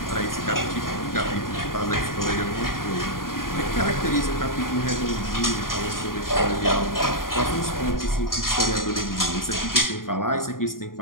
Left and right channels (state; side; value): late; right; 0.91 ms